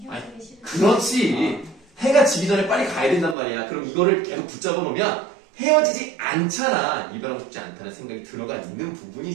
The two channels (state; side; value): drops out; left; at 3.4 s